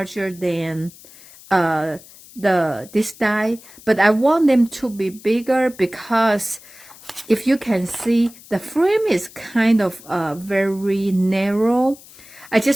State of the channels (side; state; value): left; noise; hiss, 21 dB below the sound